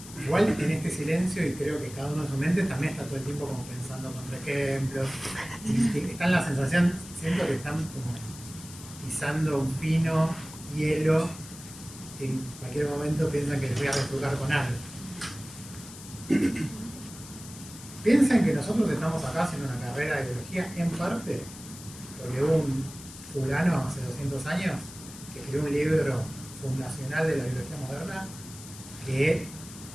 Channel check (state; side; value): noise; left; hiss, 15 dB below the sound